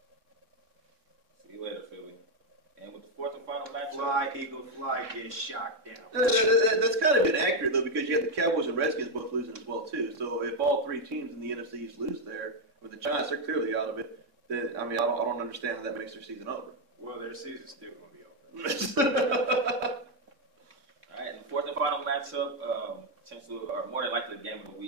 See you later, Philly. And with the fourth and final matchup, Fly, Eagle, fly, get shot down. That's kind of inaccurate, though, because you have the Cowboys and Redskins both losing as well, too. So if all three teams in the NFC East lose there, with the Giants, they're clearly out of it. Then, I mean, I don't understand how that makes their season over. Well, their season's still going to be over. all right, and the fourth and final matchup, potentially, or more than likely the game of the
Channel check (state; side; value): late; left; 3.6 ms